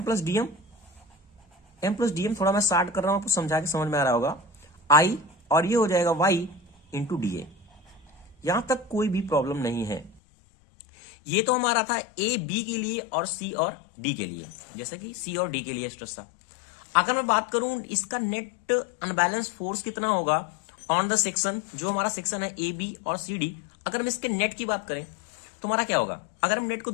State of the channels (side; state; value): right; drops out; at 10.2 s